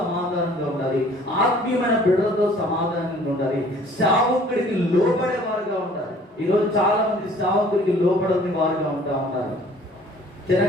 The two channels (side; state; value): both; normal; correlation 0.54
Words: ఉండాలి, ఆత్మీయమైన బిడ్డలతో సమాధానంగా ఉండాలి, సేవకుడికి లోపడే వారుగా ఉండాలి. ఈరోజు చాలా మంది సేవకుడికి లోపడని వారుగా ఉంటారు.